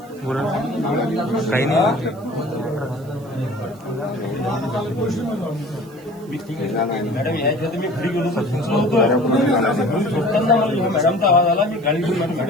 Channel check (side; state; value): right; noise; hiss, 27 dB below the sound